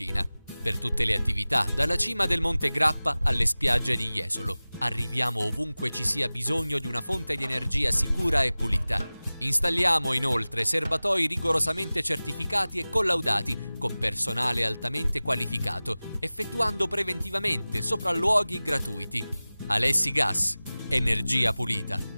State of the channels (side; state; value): both; inverted; correlation -0.98